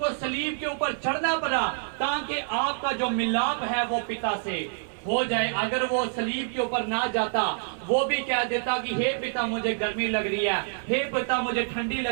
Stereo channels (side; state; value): left; silent; 60 dB below the other